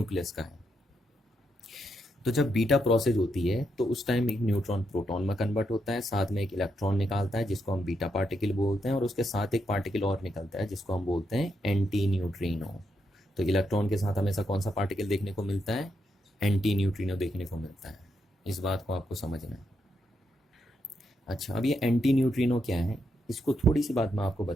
का है। तो जब बीटा प्रोसेस होती है तो उस टाइम एक न्यूट्रॉन प्रोटॉन में कन्वर्ट होता है, साथ में एक इलेक्ट्रॉन निकालता है जिसको हम बीटा पार्टिकल बोलते हैं, और उसके साथ एक पार्टिकल और निकलता है जिसको हम बोलते हैं एंटी न्यूट्रिनो। तो इलेक्ट्रॉन के साथ हमेशा कौन सा पार्टिकल देखने को मिलता है, एंटी न्यूट्रिनो देखने को मिलता है। इस बात को आपको समझना है। अच्छा, अब ये एंटी न्यूट्रिनो क्या है, इसको थोड़ी सी बात मैं आपको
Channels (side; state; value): both; normal; correlation 0.81